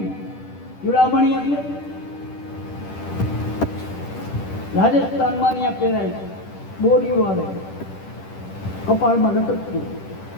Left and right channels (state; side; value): late; right; 10 ms